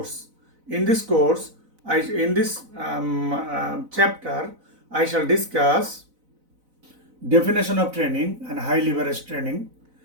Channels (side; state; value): left; late; 4.0 ms